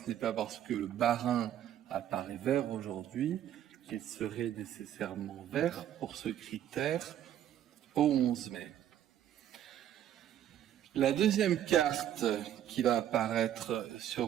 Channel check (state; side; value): quieter; left; 10.9 dB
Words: n'est pas parce que le Bas-Rhin apparaît vert aujourd'hui qu'il serait nécessairement vert pour ce critère au 11 mai. La deuxième carte qui va apparaître